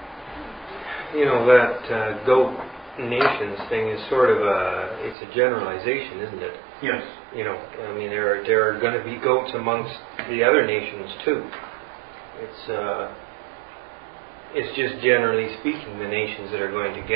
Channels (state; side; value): drops out; left; at 5.2 s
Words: that goat nations thing is sort of it's a generalization, isn't it? Yes. There are going to be goats amongst the other nations too. It's just generally speaking the nations that are going to